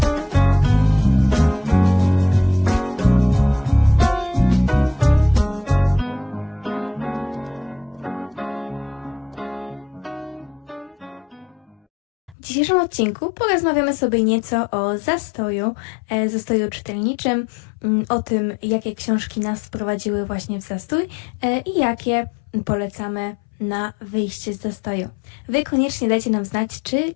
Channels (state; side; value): drops out; right; at 12.4 s